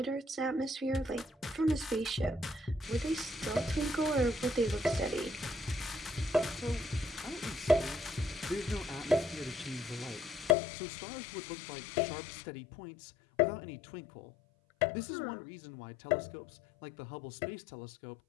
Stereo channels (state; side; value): drops out; right; at 10.6 s